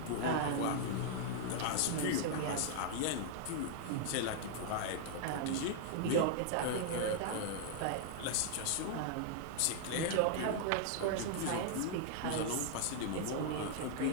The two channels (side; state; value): both; different; correlation -0.01